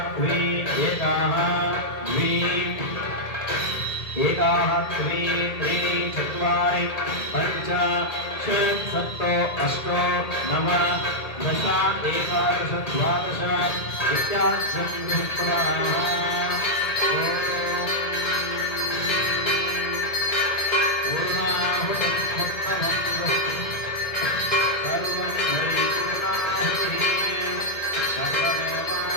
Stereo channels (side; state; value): right; late; 2.0 ms